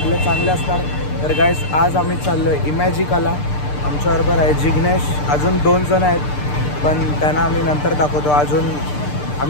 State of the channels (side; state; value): right; late; 6.7 ms